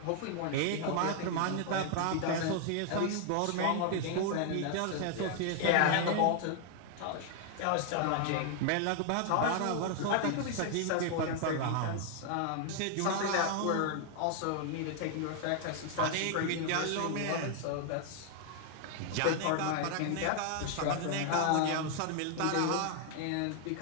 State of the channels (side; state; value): both; different; correlation 0.00